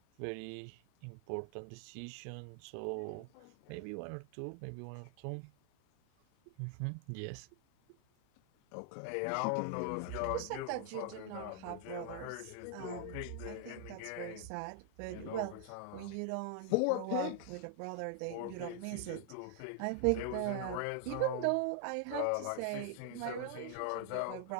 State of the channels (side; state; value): both; different; correlation 0.00